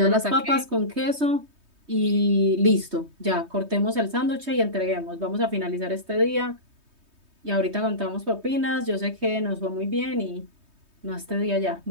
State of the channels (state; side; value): late; left; 3.2 ms